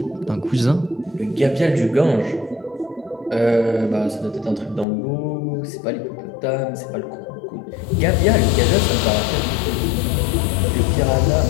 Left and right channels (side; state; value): right; drops out; at 4.9 s